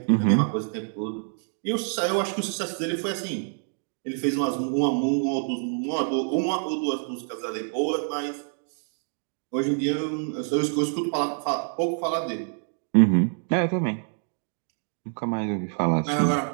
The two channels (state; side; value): silent; left; 60 dB below the other